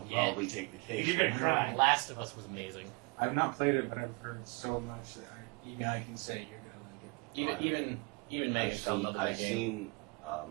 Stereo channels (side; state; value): left; quieter; 30.5 dB